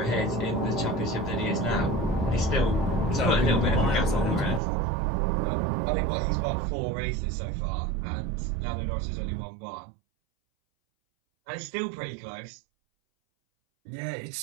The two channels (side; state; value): left; drops out; at 4.6 s